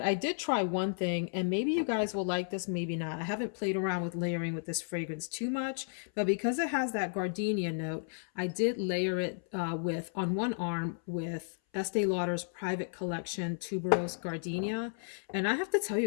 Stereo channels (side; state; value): right; silent; 56 dB below the other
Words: I did try one thing and maybe you guys will like this, maybe not. I haven't played around with layering with this fragrance too much, but because it has that gardenia note, I did layer it on one arm with Estee Lauder's Private Collection Tuberose Gardenia. And I have to tell